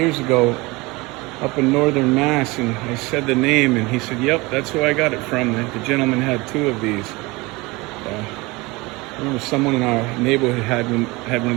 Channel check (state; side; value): quieter; left; 23.6 dB